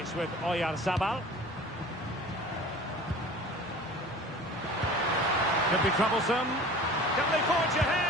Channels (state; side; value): normal; both; correlation 0.42